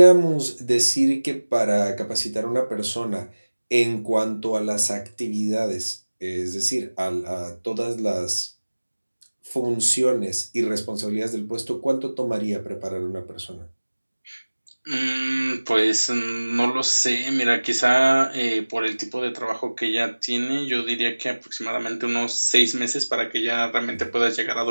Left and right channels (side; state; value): both; inverted; correlation -1.00